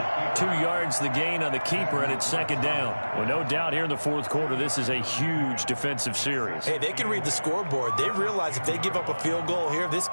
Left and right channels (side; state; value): both; inverted; correlation -1.00